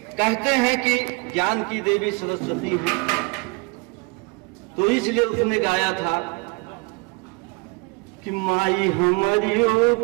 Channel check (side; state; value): left; quieter; 29.5 dB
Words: कहते हैं कि ज्ञान की देवी सरस्वती है, तो इसलिए उसने गाया था कि माई हमारियों